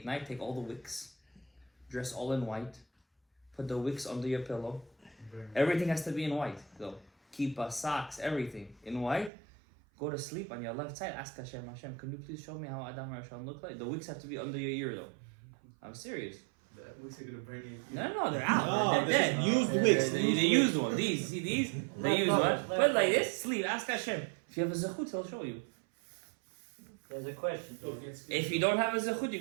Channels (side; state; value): left; drops out; at 9.3 s